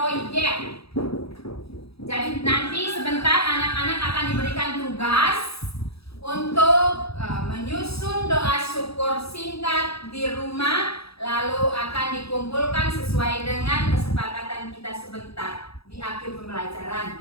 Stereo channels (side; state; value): right; late; 0.77 ms